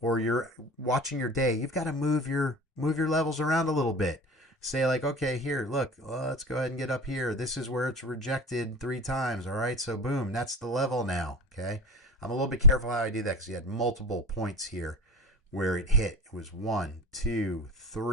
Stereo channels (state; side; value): normal; both; correlation 0.32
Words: or you're watching your day, you've got to move your levels around a little bit. Say like, okay, here, look, let's go ahead and get up here. This is where it's rejected 3 times. All right, so boom, that's the level now. Okay, I'm a little bit careful how I do that because you had multiple points here where it hit. It was 1, 2,